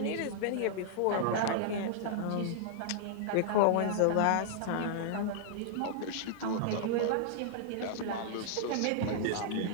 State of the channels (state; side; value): different; both; correlation -0.01